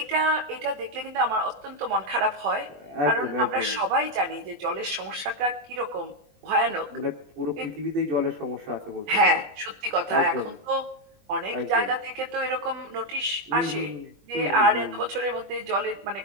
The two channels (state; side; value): late; left; 21 ms